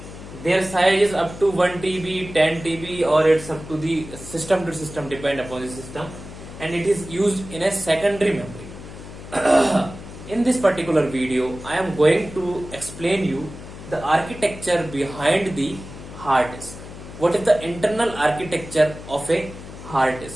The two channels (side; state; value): left; noise; hum, 14 dB below the sound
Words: Their size is up to 1 TB, 10 TB, or it's up to the system to system, depend upon the system, and it is used in a secondary memory. In this particular video, I am going to explain you the architecture behind the hard disk. What is the internal architecture of a hard